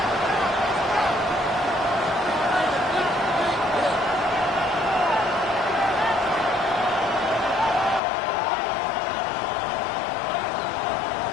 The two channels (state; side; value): drops out; right; at 8.0 s